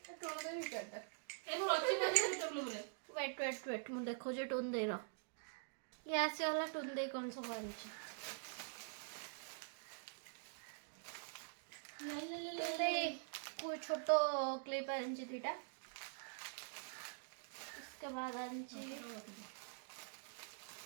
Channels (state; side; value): silent; left; digital silence